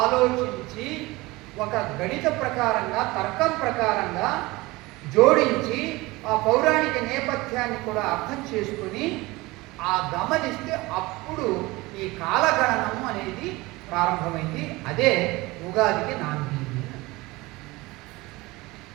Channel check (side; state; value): left; quieter; 21.5 dB